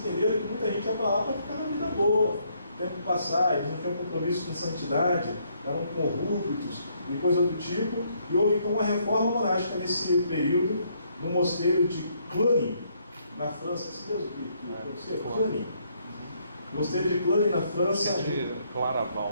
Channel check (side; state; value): both; inverted; correlation -0.71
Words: que muita gente ia para lá para ficar na vida boa. O tempo passar, eles não tinham compromisso com santidade, eram corruptos e coisa do tipo, e houve então uma reforma monástica nesse período no mosteiro de Cluny, na França. Assim mesmo que Cluny. O mosteiro de Cluny, na França. De